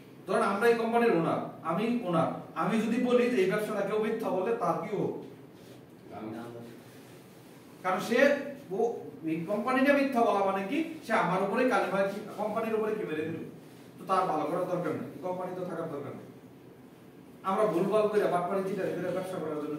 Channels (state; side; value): identical; both; correlation 1.00